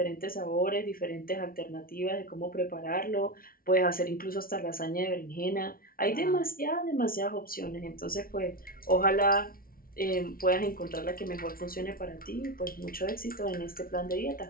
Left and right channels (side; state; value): right; late; 0.43 ms